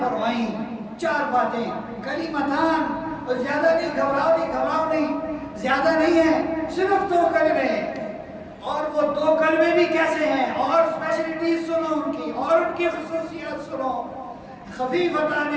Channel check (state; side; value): identical; both; correlation 1.00